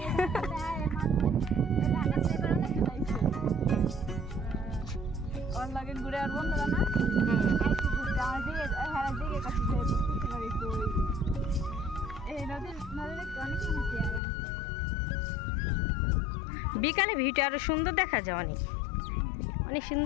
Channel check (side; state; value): right; drops out; at 14.2 s